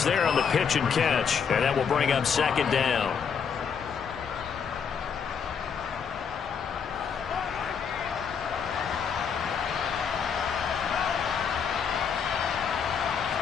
there on the pitch and catch. And that will bring up 2nd down.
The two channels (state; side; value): quieter; right; 6.7 dB